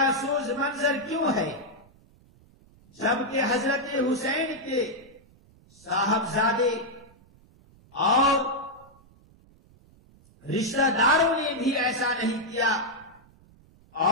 منظر کیوں ہے، جبکہ حضرت حسین کے صاحبزادے اور رشتہ داروں نے بھی ایسا نہیں کیا،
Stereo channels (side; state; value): right; noise; rumble, 28 dB below the sound